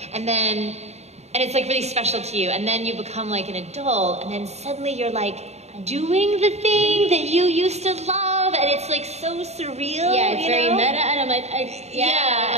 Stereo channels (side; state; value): left; late; 0.32 ms